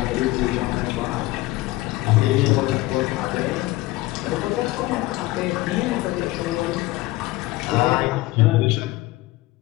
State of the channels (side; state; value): right; quieter; 19.0 dB